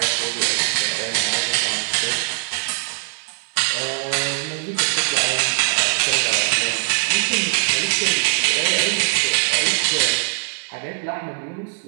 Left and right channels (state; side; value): silent; left; 62 dB below the other